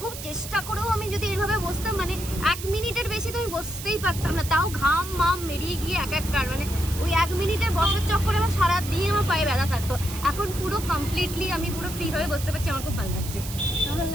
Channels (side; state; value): right; noise; hiss, 10 dB below the sound